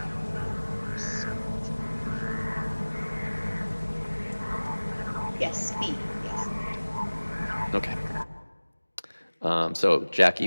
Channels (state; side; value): inverted; both; correlation -1.00